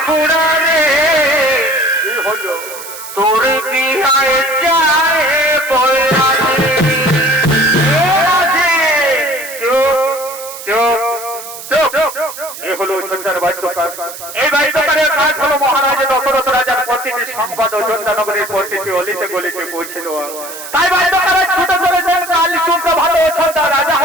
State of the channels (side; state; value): right; noise; hiss, 12 dB below the sound